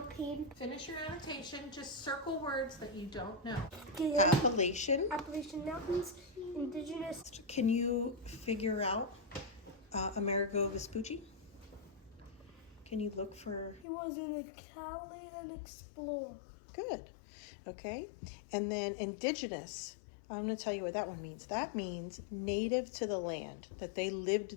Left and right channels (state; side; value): drops out; right; at 13.9 s